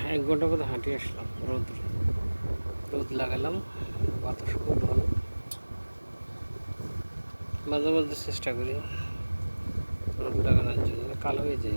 1 ঘন্টা মতো হাঁটি আসলাম। রোদ লাগালাম, বাতাস খুব ভালো। মাঝে মাঝে চেষ্টা করি রোদ লাগানোর জন্য, কালো হয়ে যায়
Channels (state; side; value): inverted; both; correlation -1.00